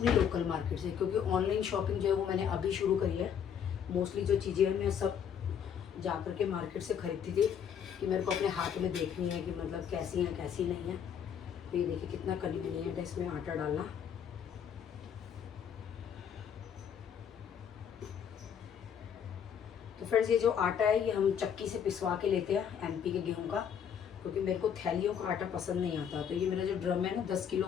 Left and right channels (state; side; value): quieter; right; 8.1 dB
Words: लोकल मार्केट से, क्योंकि ऑनलाइन शॉपिंग जो है वो मैंने अभी शुरू करी है। मोस्टली जो चीज़ें हैं मैं सब जा कर के मार्केट से ख़रीदती थी कि मेरे को अपने हाथ में देखनी है कि मतलब कैसी हैं कैसी नहीं है। तो ये देखिए कितना कन्वीनियंट है इसमें आटा डालना। तो फ्रेंड्स ये जो आटा है ये हम चक्की से पिसवा के लेते हैं एमपी के गेहूं का, क्योंकि मेरे को थैलियों का आटा पसंद नहीं आता। तो ये मेरा जो ड्रम है ना 10 किलो